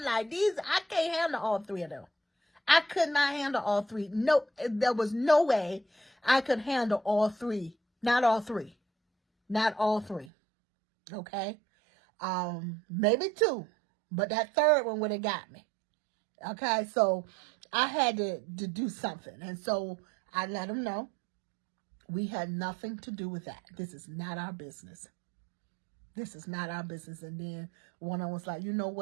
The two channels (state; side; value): drops out; left; at 10.3 s